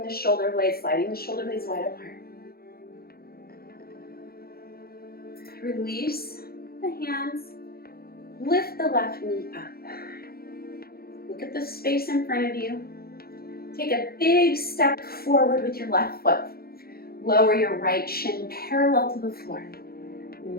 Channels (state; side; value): late; right; 0.44 ms